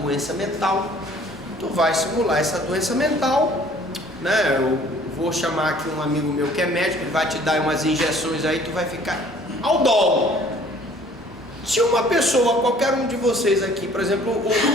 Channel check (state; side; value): noise; left; hum, 30 dB below the sound